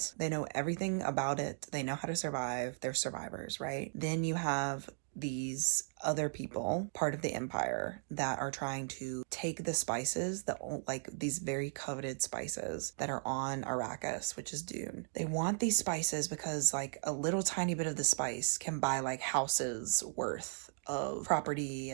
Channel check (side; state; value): left; silent; digital silence